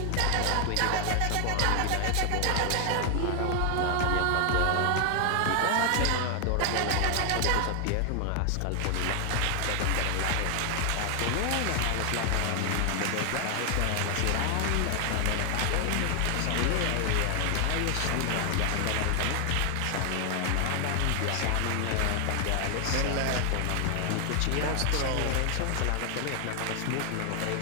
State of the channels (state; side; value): different; both; correlation 0.00